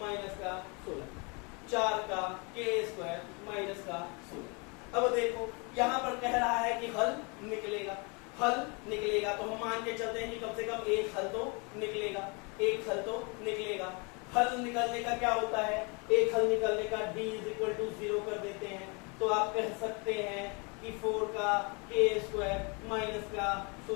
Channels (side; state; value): right; quieter; 31.7 dB